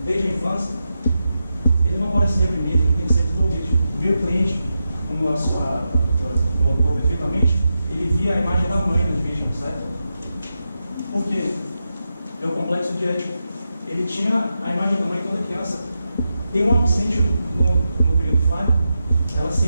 desde a infância, ele não pode ser reprimido, ele tem que ser desenvolvido. O meu cliente, como a doutora colocou perfeitamente, ele via a imagem da mãe nas vítimas, certo? Por quê? É o complexo de Édipo. Ele tinha a imagem da mãe toda criança. Tem uma que sente no período falho, ela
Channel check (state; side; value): inverted; both; correlation -0.88